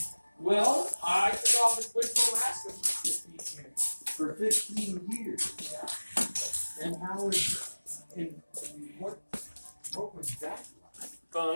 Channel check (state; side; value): inverted; both; correlation -1.00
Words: Well, I took off and went to Alaska for 15 years. For 15 years. And how is and what was that